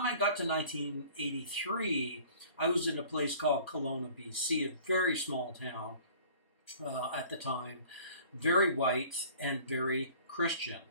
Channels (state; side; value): inverted; both; correlation -0.49